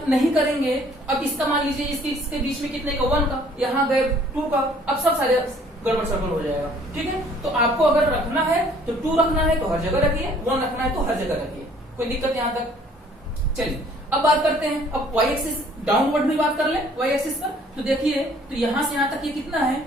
नहीं करेंगे, अब इसका मान लीजिए इसके बीच में कितने का 1 का, यहाँ गैप 2 का, अब सब सारे गड़बड़ सड़बड़ हो जाएगा। ठीक है, तो आपको अगर रखना है तो 2 रखना है तो हर जगह रखिए, 1 रखना है तो हर जगह रखिए, कोई दिक्कत यहां तक। चलिए अब बात करते हैं, अब वाई एक्सिस डाउनवर्ड भी बात कर ले वाई एक्सिस पर। तो देखिए तो यहां से यहां तक ये कितना है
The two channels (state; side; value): normal; both; correlation 0.57